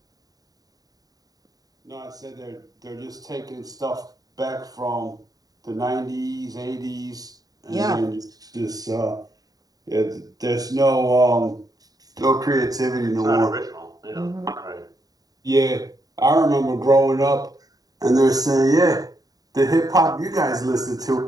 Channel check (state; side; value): late; left; 0.18 ms